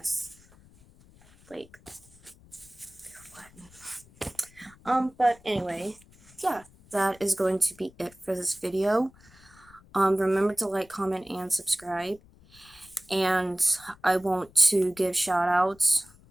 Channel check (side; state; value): left; noise; rumble, 26 dB below the sound